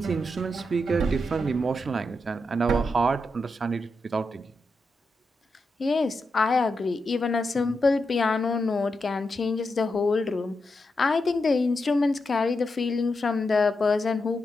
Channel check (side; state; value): both; normal; correlation 0.86